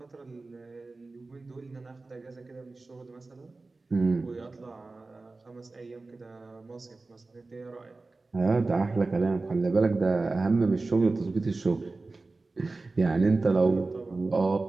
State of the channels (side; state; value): left; quieter; 3.5 dB